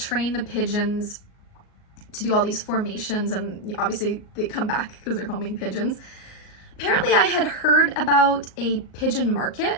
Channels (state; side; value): late; right; 38 ms